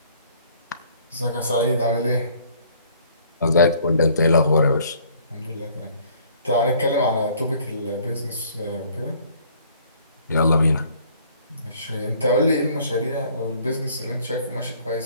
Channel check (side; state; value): both; inverted; correlation -0.58